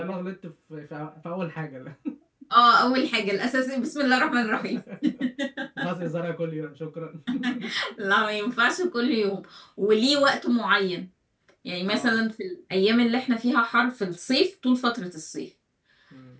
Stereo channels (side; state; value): both; identical; correlation 1.00